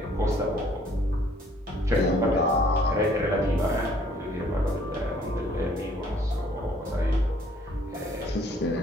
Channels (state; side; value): normal; both; correlation 0.60